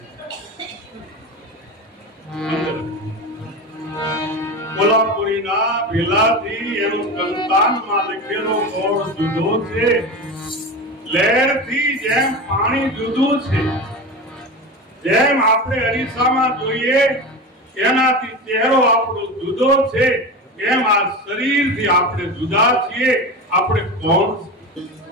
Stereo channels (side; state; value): both; normal; correlation 0.25